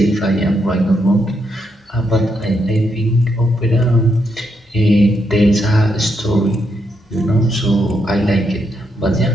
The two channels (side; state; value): both; normal; correlation 0.79